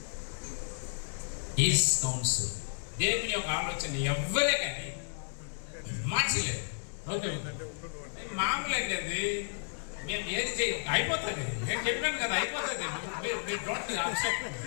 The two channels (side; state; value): right; silent; digital silence